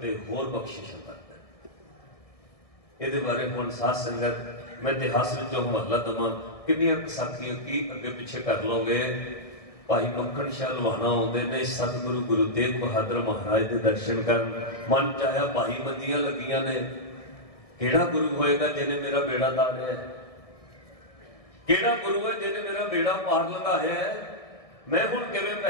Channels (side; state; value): right; late; 1.7 ms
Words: होर बख्शिश करदा है। इहदे बारे हुण साध संगत मैं इतिहास विचों हवाला देवां, कितनी साखियां की अगे पिछे कर लोगे। भाई मक्खन शाह लुहाना आउंदे ने सतगुरु गुरु तेग बहादुर महाराज के दर्शन करन। मन चाया भाई मंदियां लगियां ने, केड़ा गुरु होएगा जिन्हें मेरा बेड़ा तारिया है? केड़ा गुरु है जिन्हें मेरा बेड़ा पार लगाया है? मैं हुण किवें